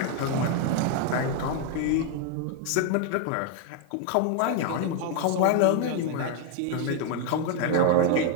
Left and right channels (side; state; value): both; different; correlation 0.00